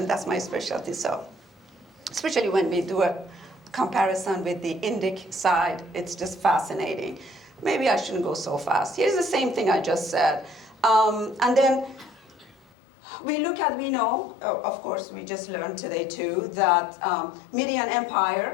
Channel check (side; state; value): right; drops out; at 12.6 s